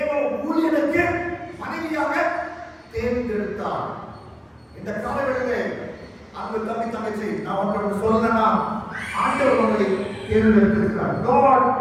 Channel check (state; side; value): identical; both; correlation 1.00